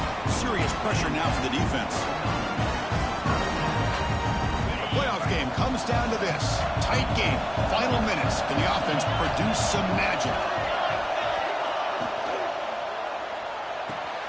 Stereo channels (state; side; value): identical; both; correlation 1.00